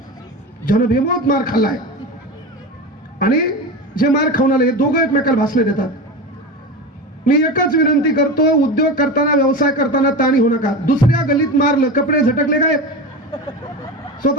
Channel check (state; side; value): normal; both; correlation 0.25